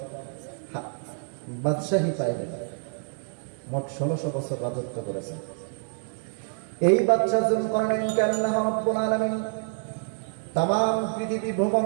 বাদশাহী পাইলেন। মোট 1600 বছর রাজত্ব করেছেন। এই বাদশাহ যুলকারনাইনকে আল্লাহ রাব্বুল আলামিন তাম পৃথিবী ভ্রমণ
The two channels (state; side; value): silent; left; 60 dB below the other